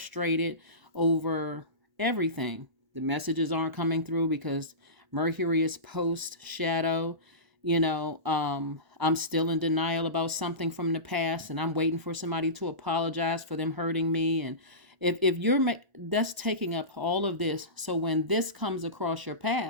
over everything. The messages aren't coming through because Mercury is post shadow. You know, I'm still in denial about something from the past, and I'm waiting for somebody to apologize for them hurting me. And if you're, that's taking up all of this. So when this comes across your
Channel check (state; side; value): late; left; 1.0 ms